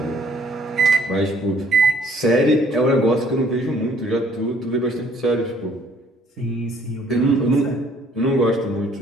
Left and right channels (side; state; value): both; normal; correlation 0.61